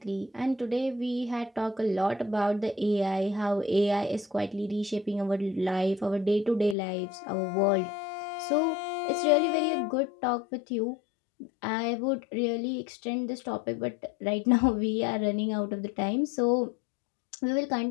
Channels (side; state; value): right; drops out; at 6.8 s